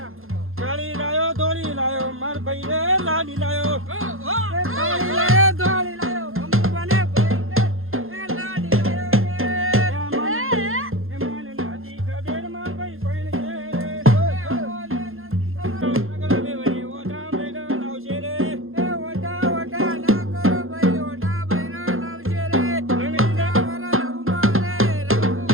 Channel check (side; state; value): left; late; 0.61 ms